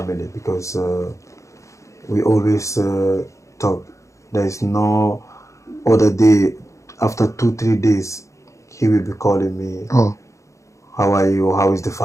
because we always talk. There is no other day, after 2-3 days, he will be calling me, how are you, how is the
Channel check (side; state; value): right; late; 0.15 ms